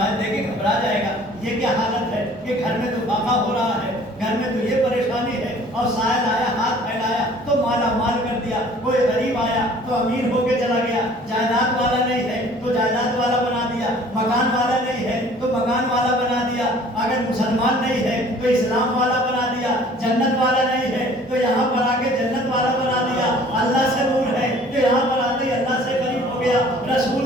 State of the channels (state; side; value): normal; both; correlation 0.52